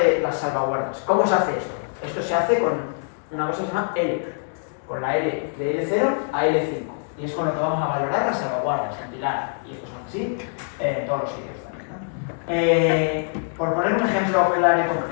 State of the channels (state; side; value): silent; right; digital silence